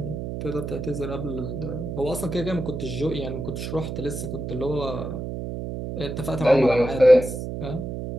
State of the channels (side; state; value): right; noise; hum, 5 dB below the sound